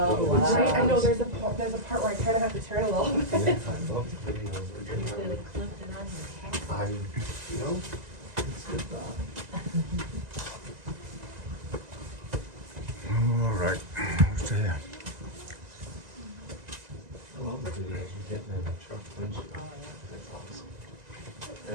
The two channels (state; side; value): late; left; 1.9 ms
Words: wow. Right? I know there's a part where I kind of have to turn a little bit. I love the videos. They're getting I, you know, It's good thought. All right, who's there? I love the videos. You're getting in the truck windshield. That's awesome.